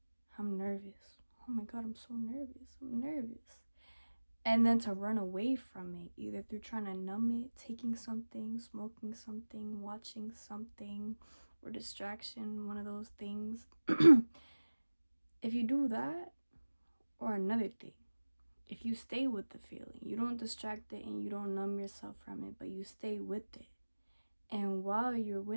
I'm nervous. Oh my God, I'm so nervous. I'm nervous. And then to run away from it, either through trying to numb it, taking something, smoking something, watching something, or distraction, one of those things. If you do that, or another thing, if you stay with the feeling, you don't distract it and you don't numb yourself from it, but you stay with it. And while you're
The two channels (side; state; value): both; inverted; correlation -1.00